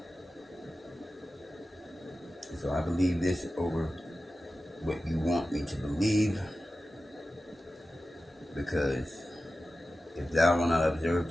So I believe this over what you want me to believe, because if thou wilt not observe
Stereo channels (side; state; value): both; normal; correlation 0.94